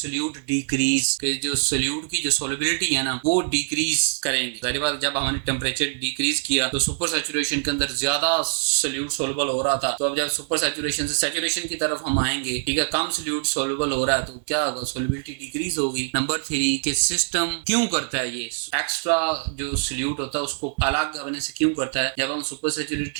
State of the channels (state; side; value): silent; left; digital silence